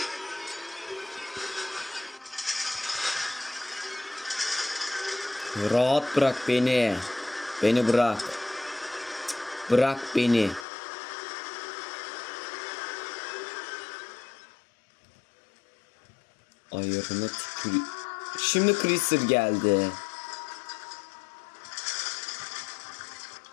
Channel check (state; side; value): drops out; right; at 10.7 s